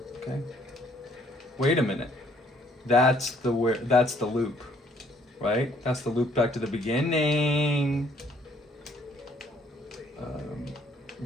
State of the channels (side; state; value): both; normal; correlation 0.63